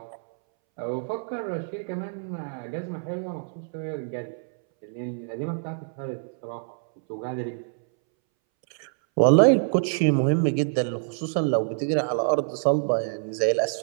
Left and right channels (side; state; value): left; silent; 61 dB below the other